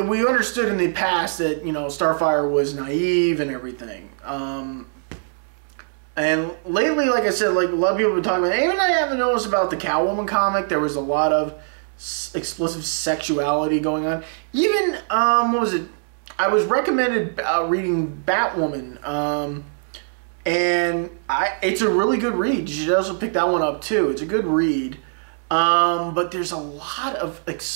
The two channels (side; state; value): left; silent; 64 dB below the other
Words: understood in the past that, you know, Starfire was naive and everything. And lately, like I said, like a lot of people have been talking about, even I haven't noticed about the Catwoman comic, there was a lot of explicit sexuality going on. Even, what was it? I was recommended reading Batwoman, and it's a really good read. You should also pick that one up too. It's a good read. But there's a lot of